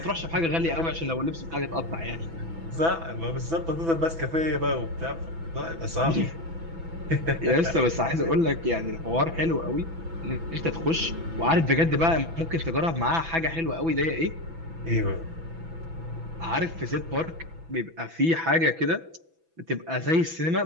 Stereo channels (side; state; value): left; late; 6.0 ms